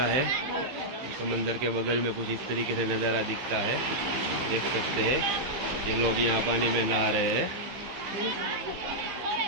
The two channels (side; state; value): left; late; 15 ms